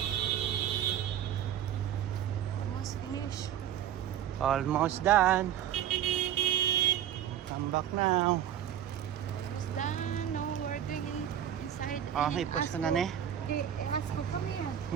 Almost finished. Almost done. Come back now. Almost done. No, we're going inside. Oh, in ipos ko Asco. na ni. Asco, come here.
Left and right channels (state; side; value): quieter; left; 10.5 dB